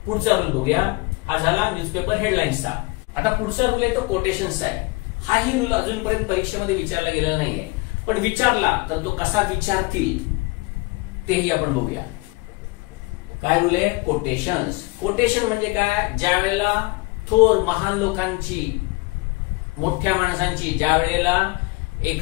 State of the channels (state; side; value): quieter; right; 25.2 dB